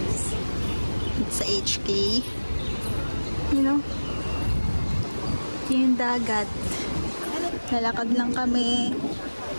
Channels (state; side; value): inverted; both; correlation -1.00